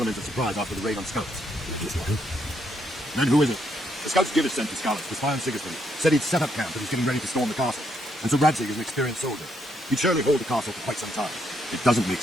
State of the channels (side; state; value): both; normal; correlation 0.75